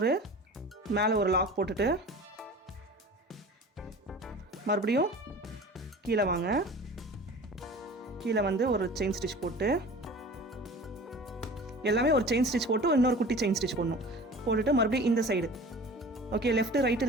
மேலே ஒரு லாக் போட்டுட்டு மறுபடியும் கீழே வாங்க. கீழே வந்து ஒரு செயின் ஸ்டிச் போட்டு எல்லாமே ஒரு செயின் ஸ்டிச் போட்டு இன்னொரு குட்டி செயின் ஸ்டிச் போட்டுட்டு மறுபடியும் இந்த சைடு ஓகே லெஃப்ட்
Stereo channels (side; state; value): both; normal; correlation 0.40